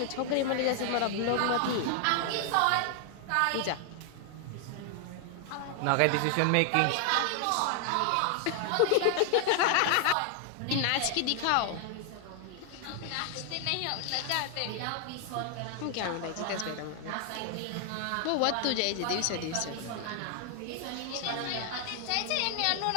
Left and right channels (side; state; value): both; different; correlation 0.00